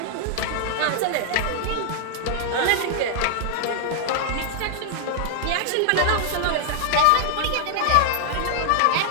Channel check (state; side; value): different; both; correlation 0.00